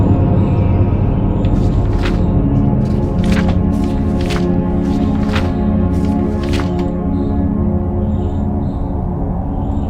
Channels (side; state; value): both; identical; correlation 1.00